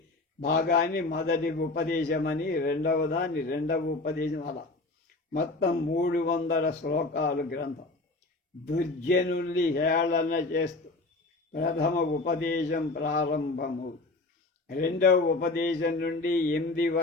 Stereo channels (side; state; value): right; quieter; 3.2 dB